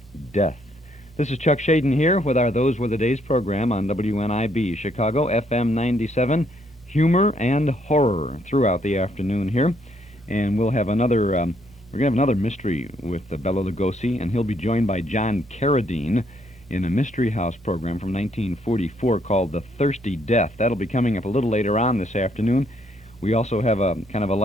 Death. This is Chuck Shaden here with our Those Were the Days program on WNIB, Chicago, FM 97, humor and horror throughout the afternoon here. And we'll have another... We're going to have another mystery with Bela Lugosi, and he'll be joined by John Carradine in a Mystery House program from 1944 called The Thirsty Death. That'll be coming up a little later on this afternoon. We also have a kind of a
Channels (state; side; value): normal; both; correlation 0.71